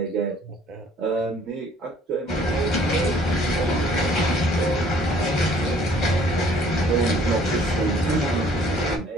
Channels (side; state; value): both; normal; correlation 0.57